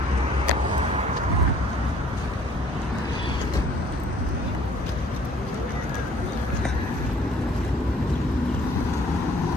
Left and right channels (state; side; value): normal; both; correlation 0.57